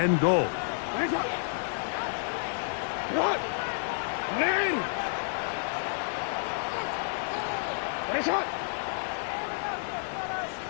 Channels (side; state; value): right; silent; digital silence